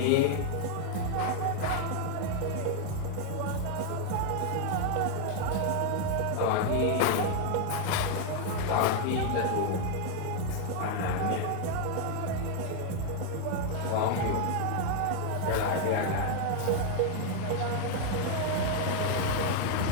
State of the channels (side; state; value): both; different; correlation 0.00